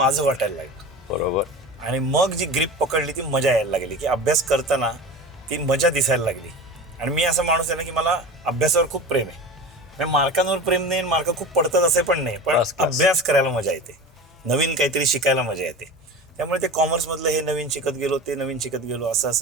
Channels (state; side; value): normal; both; correlation 0.32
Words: वाटायला लागलं. बरोबर. आणि मग जी ग्रीप पकडली ती मजा यायला लागली की अभ्यास करताना ती मजा दिसायला लागली. आणि मी असा माणूस आहे ना की मला अभ्यासावर खूप प्रेम आहे. म्हणजे मार्कांवर प्रेम नाही, मार्क खूप पडतात असे पण नाही, पण अभ्यास करायला मजा येते, नवीन काहीतरी शिकायला मजा येते. त्यामुळे ते कॉमर्समधलं हे नवीन शिकत गेलो, ते नवीन शिकत गेलो,